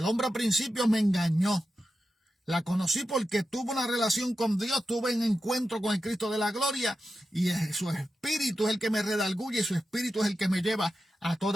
hombre al principio me engañó. La conocí porque tuve una relación con Dios, tuve un encuentro con el Cristo de la gloria, y su espíritu es el que me redarguye, y su espíritu es el que me lleva a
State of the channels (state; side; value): normal; both; correlation 0.90